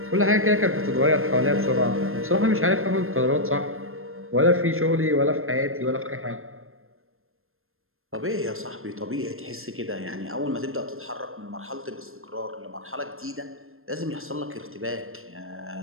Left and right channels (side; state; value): left; late; 0.61 ms